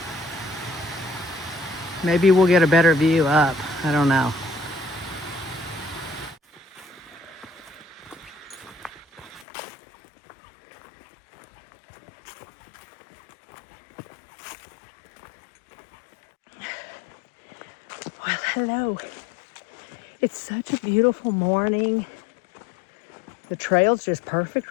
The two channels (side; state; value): right; drops out; at 9.5 s